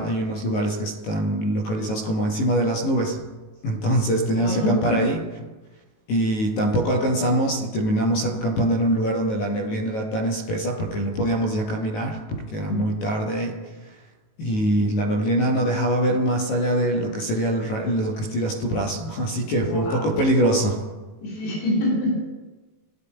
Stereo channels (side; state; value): right; late; 19 ms